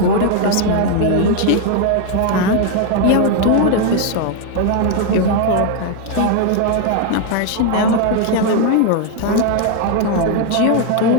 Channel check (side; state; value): both; different; correlation 0.01